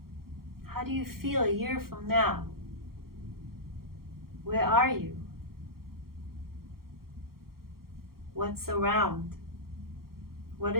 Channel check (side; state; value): left; late; 0.94 ms